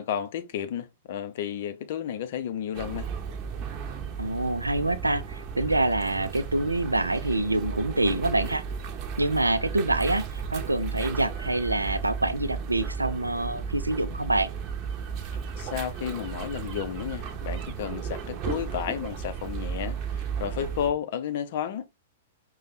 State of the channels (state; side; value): inverted; both; correlation -0.58